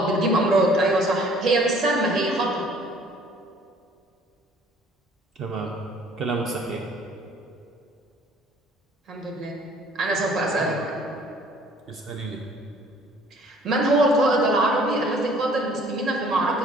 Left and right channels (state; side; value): normal; both; correlation 0.55